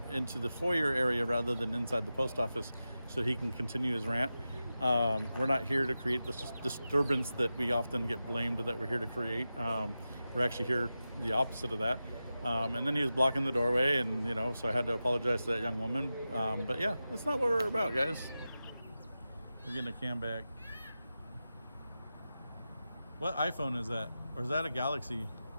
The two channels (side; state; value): both; inverted; correlation -0.93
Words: into the foyer area rather than inside the post office, so he can continue his rant. We're not here to create this disturbance that we often get blamed that we're here to create. We're actually here the opposite of that. And then he was blocking the doorway, and so I had to apologize to that young woman. But yeah, that's not what we're about, guys. We're getting a cam back. What iPhone is that? Or is that a Galaxy?